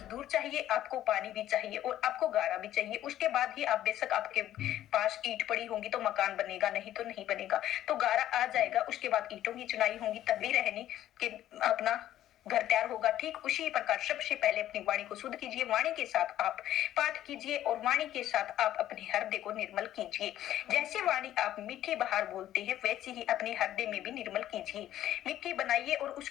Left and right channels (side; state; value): right; quieter; 12.7 dB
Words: चाहिए, आपको पानी भी चाहिए और आपको गारा भी चाहिए। उसके बाद ही आप, बेशक आपके पास ईंट पड़ी होंगी तो मकान बनेगा, नहीं तो नहीं बनेगा। तो गारा आ जाएगा, उसके बाद ईंटों की चुनाई होगी, तभी रहने के अपना घर तैयार होगा। ठीक उसी प्रकार सबसे पहले अपनी वाणी को शुद्ध कीजिए, वाणी के साथ आप पाठ कीजिए और वाणी के साथ आप अपने हृदय को निर्मल कीजिए। जैसे वाणी आप मीठे बाहर बोलते हैं वैसे ही अपने हृदय में भी निर्मल कीजिए, मीठी बनाइए और